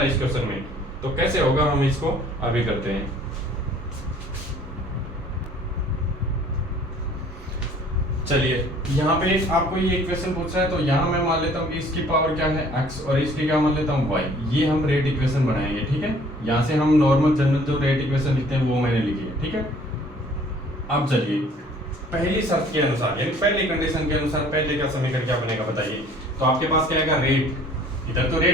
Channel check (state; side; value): normal; both; correlation 0.54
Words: इस क्वेश्चन में। तो कैसे होगा, हम इसको अभी करते हैं। चलिए, यहाँ पे आपको ये इक्वेशन पूछ रहा है, तो यहाँ मैं मान लेता हूँ कि इसकी पावर क्या है x और इसकी क्या मान लेता हूँ y। ये हम रेट इक्वेशन बनाएंगे, ठीक है। यहाँ से हम नॉर्मल जनरल जो रेट इक्वेशन लिखते हैं वो मैंने लिखी है, ठीक है। अब चलिए, पहली शर्त के अनुसार, यानी पहली कंडीशन के अनुसार पहले का समीकरण क्या बनेगा बताइए। तो आपके पास क्या आएगा, रेट। इधर तो